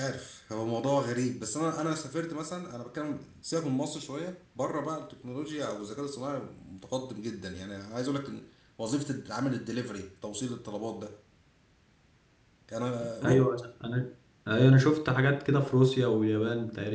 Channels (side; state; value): both; identical; correlation 1.00